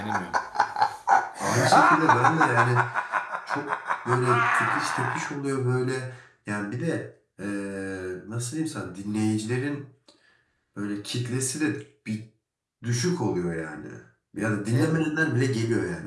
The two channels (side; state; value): both; identical; correlation 1.00